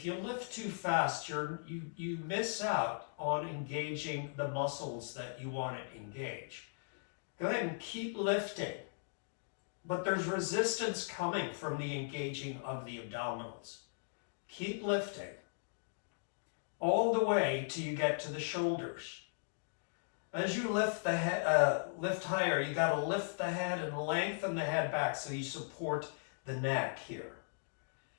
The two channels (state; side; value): silent; right; digital silence